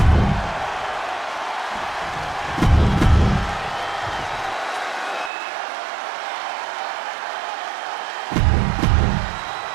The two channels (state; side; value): drops out; left; at 5.3 s